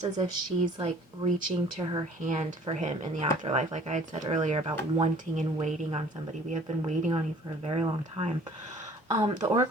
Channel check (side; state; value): both; normal; correlation 0.52